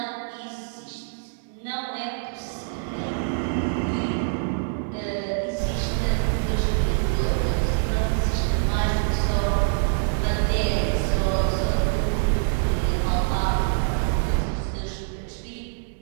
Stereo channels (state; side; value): silent; left; digital silence